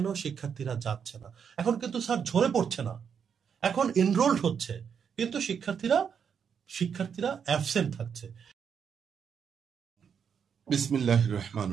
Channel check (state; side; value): quieter; left; 7.2 dB